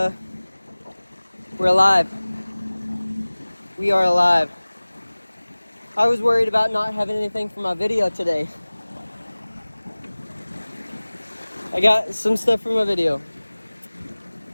we're alive. We are alive. I was worried about not having anything for my video today. I got some stuff for my video.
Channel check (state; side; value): inverted; both; correlation -1.00